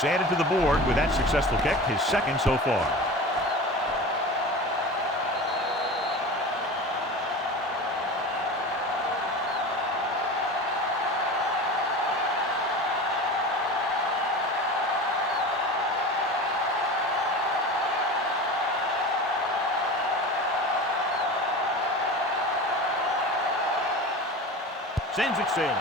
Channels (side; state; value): both; normal; correlation 0.32